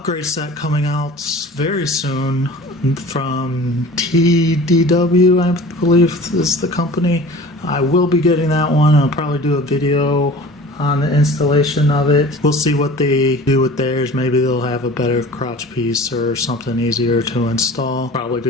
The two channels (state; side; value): normal; both; correlation 0.42